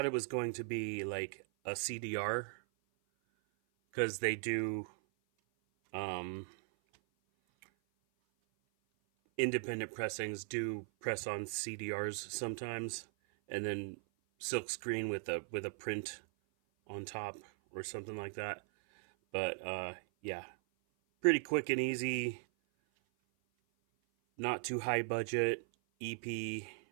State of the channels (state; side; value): silent; left; 52 dB below the other